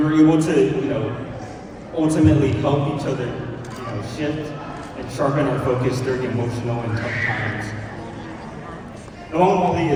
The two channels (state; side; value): identical; both; correlation 1.00